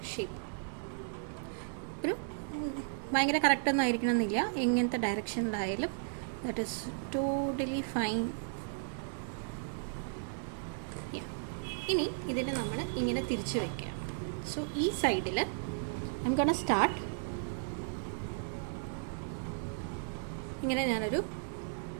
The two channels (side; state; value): left; silent; digital silence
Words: ഷേപ്പ്. ഒരു ഭയങ്കര കറക്റ്റൊന്നും ആയിരിക്കണം എന്നില്ല, എങ്ങനത്തെ ഡയറക്ഷനിലായാലും ദാറ്റ് ഈസ് ടോട്ടലി ഫൈൻ. ഇനി ഇതിനെ നമ്മൾ ഇങ്ങനെ തിരിച്ച് വയ്ക്കുക. സോ ഈ സൈഡിൽ ഐ എം ഗോണ സ്റ്റാർട്ട്. ഇങ്ങനെ ഞാനൊരു